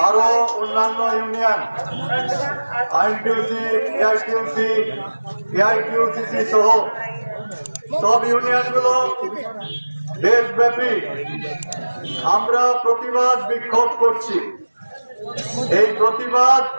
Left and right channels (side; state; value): both; inverted; correlation -1.00